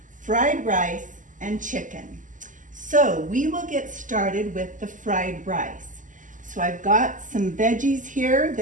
fried rice, and chicken. So we will get started with the fried rice. So I've got some veggies here.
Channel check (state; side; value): late; left; 0.37 ms